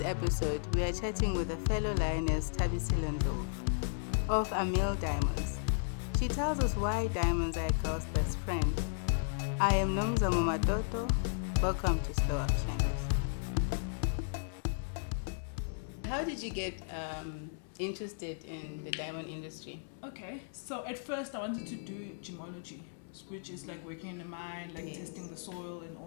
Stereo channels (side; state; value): right; silent; digital silence